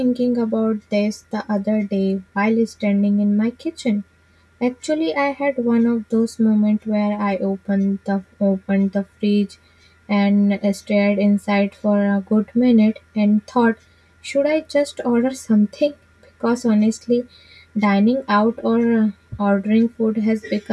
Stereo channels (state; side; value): identical; both; correlation 1.00